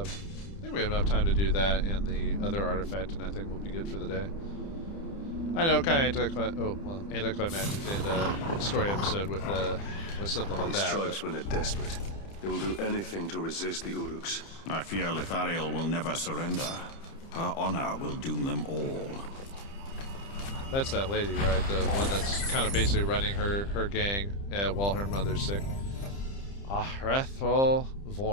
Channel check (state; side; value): late; right; 30 ms